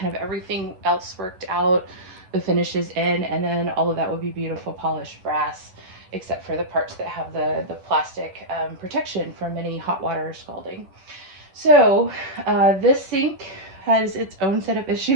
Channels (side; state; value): left; late; 11 ms